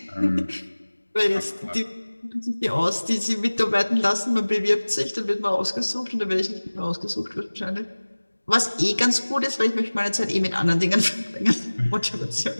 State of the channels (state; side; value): inverted; both; correlation -1.00